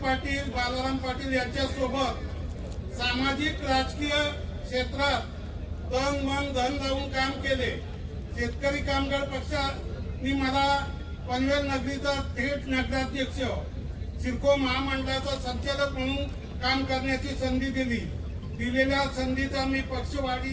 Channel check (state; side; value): identical; both; correlation 1.00